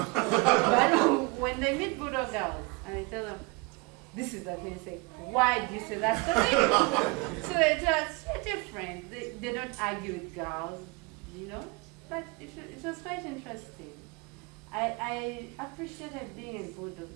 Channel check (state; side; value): quieter; left; 27.4 dB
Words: But when they meet Budo girls and they tell them, this is the thing, they say, why do you say that's the thing? So they're just different. They don't argue with girls, you know? But it was quite interesting. I appreciated being in Budo